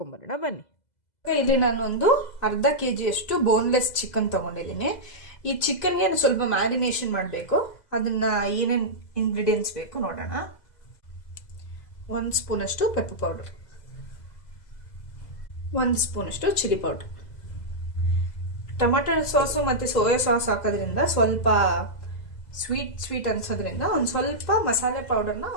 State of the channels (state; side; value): late; right; 2.0 ms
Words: ಬನ್ನಿ. ಇಲ್ಲಿ ನಾನು ಒಂದು ಅರ್ಧ kg ಅಷ್ಟು ಬೋನ್ಲೆಸ್ ಚಿಕನ್ ತೊಗೊಂಡಿದ್ದೀನಿ. ಈ ಚಿಕನ್ಗೆ ಸ್ವಲ್ಪ ಮ್ಯಾರಿನೇಷನ್ ಮಾಡಬೇಕು. ಅದನ್ನು ಏನೇನು ಇಂಗ್ರೀಡಿಯೆಂಟ್ಸ್ ಬೇಕು ನೋಡೋಣ. 1 ಸ್ಪೂನಷ್ಟು ಪೆಪ್ಪರ್ ಪೌಡರ್, 1 ಸ್ಪೂನಷ್ಟು ಚಿಲ್ಲಿ ಪೌಡರ್. ಟೊಮೆಟೊ ಸಾಸು ಮತ್ತು ಸೋಯಾ ಸಾಸ್ ಹಾಕೋದ್ರಿಂದ ಸ್ವಲ್ಪ ಸ್ವೀಟ್ ಅನ್ಸೋದ್ರಿಂದ ಒಂದು ಸ್ವಲ್ಪ ಮಸಾಲೆ ಪೌಡರ್ನ